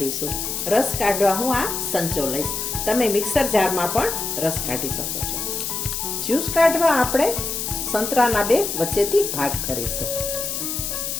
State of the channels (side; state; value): left; noise; hiss, 3 dB below the sound